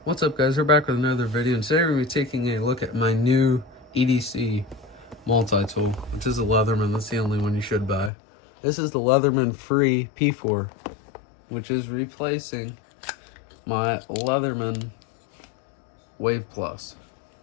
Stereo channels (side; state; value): right; drops out; at 8.1 s